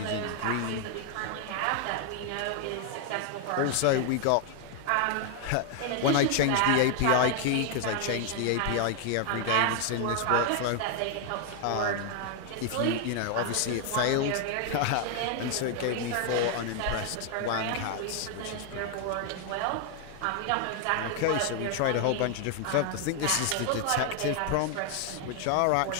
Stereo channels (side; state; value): both; different; correlation 0.00